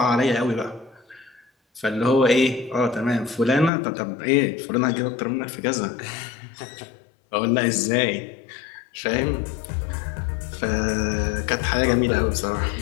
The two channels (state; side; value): drops out; right; at 3.7 s